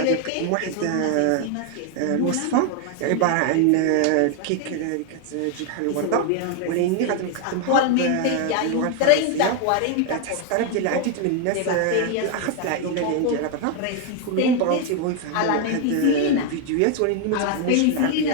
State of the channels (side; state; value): both; different; correlation 0.00